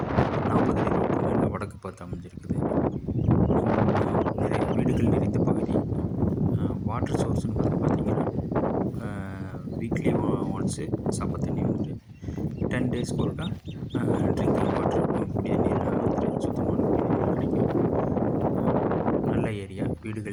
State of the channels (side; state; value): both; identical; correlation 1.00